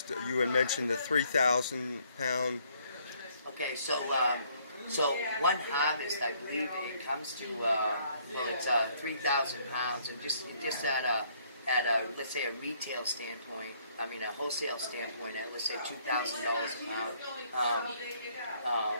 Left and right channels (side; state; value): both; inverted; correlation -0.65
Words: You had mentioned the 3,000 pound. Okay, so one harvest, I believe it comes to, it's 3,000 pounds, and just at at a, let's say, a retail standpoint, I mean a wholesale standpoint, at let's say $2,000 a pound.